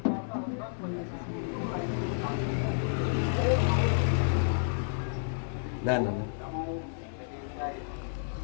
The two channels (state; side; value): silent; right; 57 dB below the other